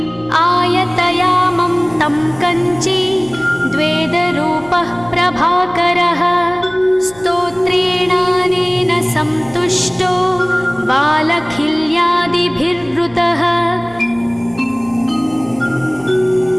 आयतयामं तं कञ्ची द्वेदरूपः प्रभाकरः स्तोत्रेणानेन सन्तुष्टो वालखिल्यादिभिर्वृतः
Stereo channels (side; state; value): left; noise; hum, 24 dB below the sound